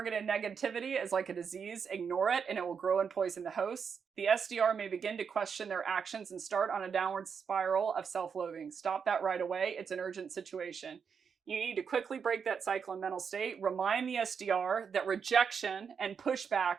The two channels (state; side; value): quieter; left; 6.5 dB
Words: negativity is like a disease. Ignore it and it will grow and poison the hosts. The SDR may begin to question their actions and start on a downward spiral of self-loathing. Stop that right away. It's an urgent situation. You need to quickly break that cycle and mental state. Remind the SDR that rejection and pushback